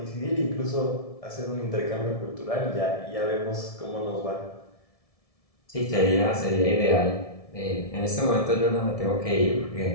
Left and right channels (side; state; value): right; late; 1.7 ms